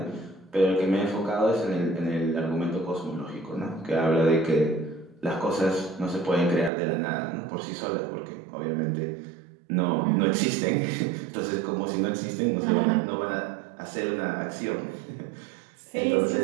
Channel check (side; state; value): left; drops out; at 6.7 s